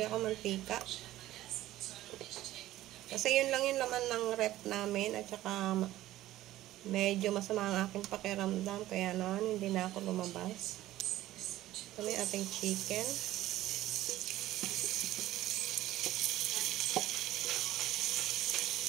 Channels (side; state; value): left; quieter; 15.0 dB